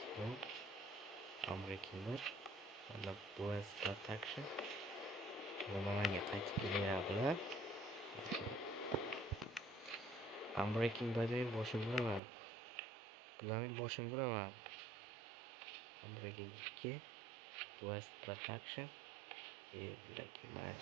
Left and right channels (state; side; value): drops out; left; at 12.2 s